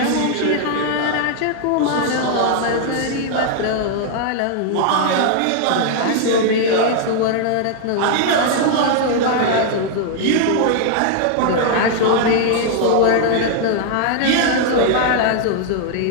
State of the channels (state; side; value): different; both; correlation 0.00